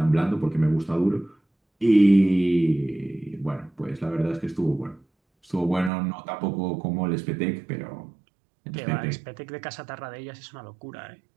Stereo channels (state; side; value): drops out; left; at 5.9 s